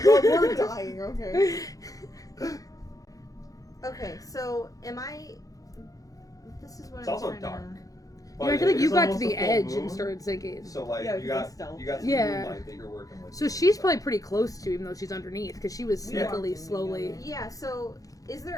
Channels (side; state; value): right; late; 0.17 ms